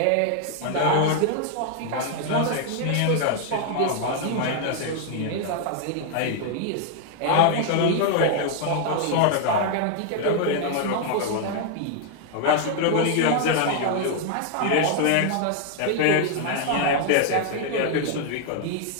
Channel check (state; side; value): different; both; correlation 0.00